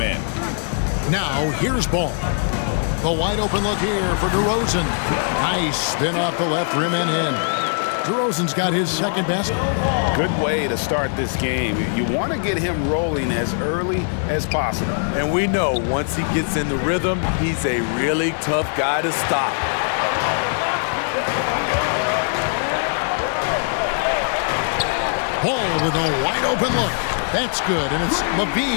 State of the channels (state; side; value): silent; right; digital silence